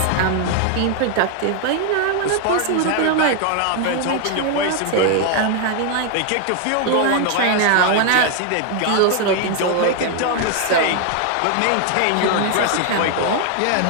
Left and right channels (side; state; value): both; different; correlation 0.00